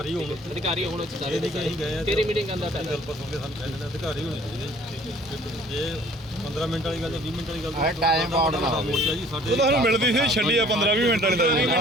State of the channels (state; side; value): normal; both; correlation 0.54